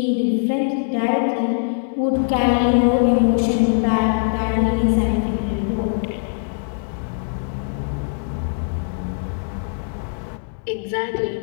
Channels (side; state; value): right; silent; digital silence